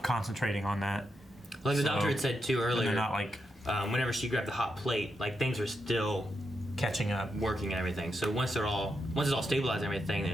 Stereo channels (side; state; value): both; normal; correlation 0.84